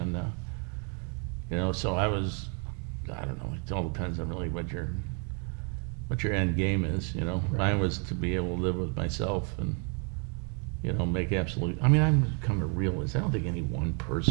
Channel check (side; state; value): left; quieter; 38.7 dB